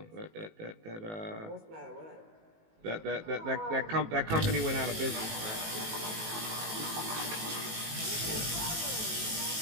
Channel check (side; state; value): left; late; 18 ms